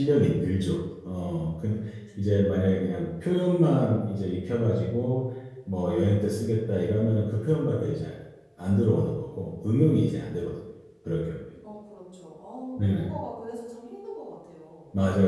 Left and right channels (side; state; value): both; identical; correlation 1.00